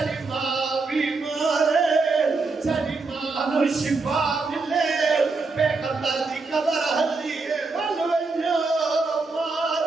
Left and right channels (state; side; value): quieter; left; 3.9 dB